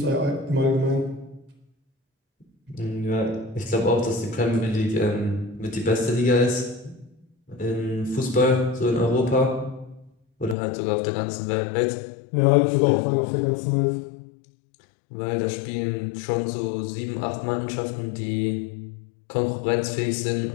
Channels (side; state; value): right; drops out; at 10.6 s